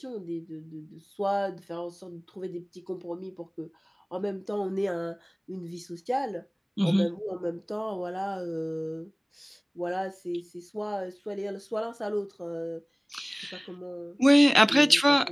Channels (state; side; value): identical; both; correlation 1.00